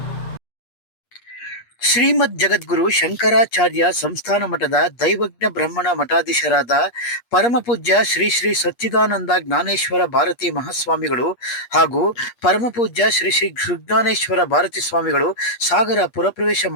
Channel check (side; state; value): right; late; 8.4 ms